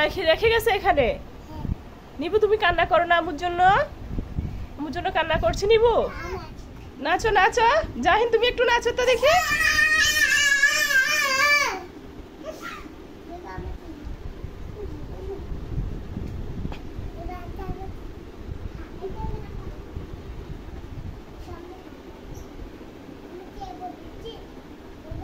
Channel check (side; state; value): both; identical; correlation 1.00